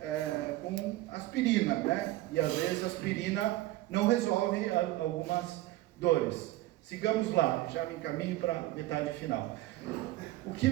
com aspirina, né? E às vezes a aspirina não resolve algumas dores. Sigamos lá, já me encaminho para a metade final. O que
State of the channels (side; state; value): left; quieter; 16.9 dB